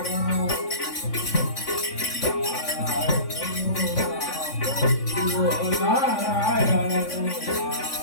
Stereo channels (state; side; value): late; right; 3.5 ms